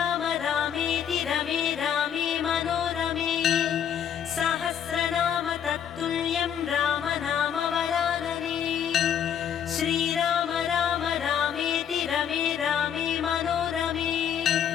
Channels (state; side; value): quieter; right; 8.8 dB